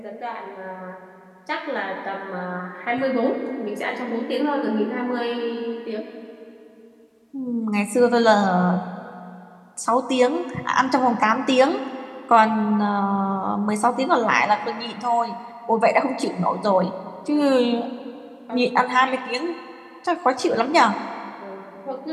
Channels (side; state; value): both; identical; correlation 1.00